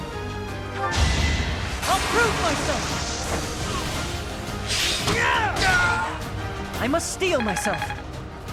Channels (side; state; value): both; identical; correlation 1.00